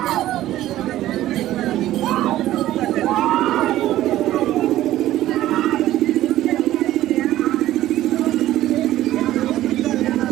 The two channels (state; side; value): quieter; left; 14.3 dB